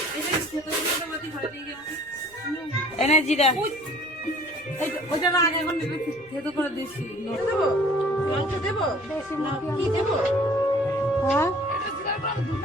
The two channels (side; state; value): right; noise; rumble, 30 dB below the sound